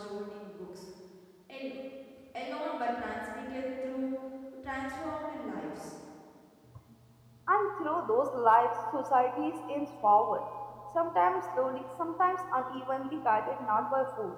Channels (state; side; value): identical; both; correlation 1.00